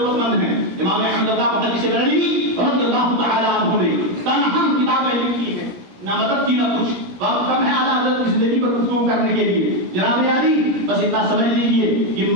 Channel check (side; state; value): left; late; 17 ms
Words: مند ہیں. امام احمد رضا محدث بریلوی رضی اللہ تعالی عنہ نے تنہا کتابیں لکھی ہیں, نہ مدد کی نہ کچھ. وقت کم ہے اعلیٰ حضرت کی زندگی پر گفتگو کرنے کے لیے. جناب عالی بس اتنا سمجھ لیجیے کہ